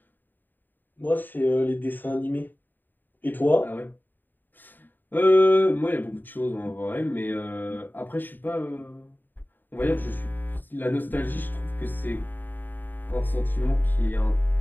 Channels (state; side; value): late; right; 0.090 ms